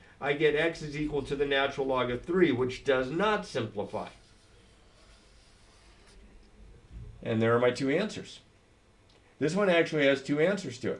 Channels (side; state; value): both; identical; correlation 1.00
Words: I get x is equal to the natural log of 3, which does not simplify. And there are my 2 answers. This one actually has 2 answers to